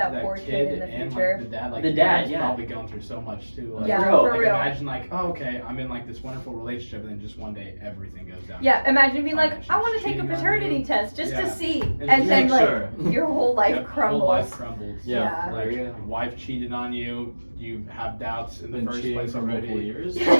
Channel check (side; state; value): both; inverted; correlation -1.00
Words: poor kid in the and, future. Like, The dad, he's yeah. probably going through so much too. Like, Yeah, Bro, for like, real. imagine like, oh, okay, I'm in like this wonderful relationship, and then just one day everything goes down. Yeah, imagine being like, she's I want to take a cheating on paternity you. test just to Yeah. see, And and then make like sure. your whole life Yep, crumbles. Whole life crumbles. Yeah. Like your wife cheated on you. You have doubts in the Been first cheating place for multiple already. years.